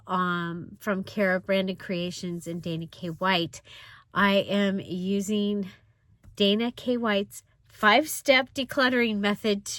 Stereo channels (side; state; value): both; identical; correlation 1.00